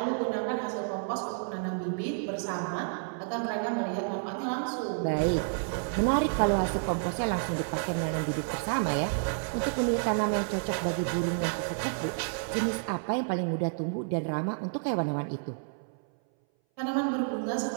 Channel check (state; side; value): silent; left; 58 dB below the other